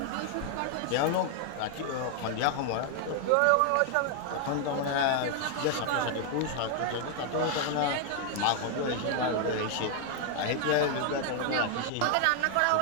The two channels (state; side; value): different; both; correlation 0.00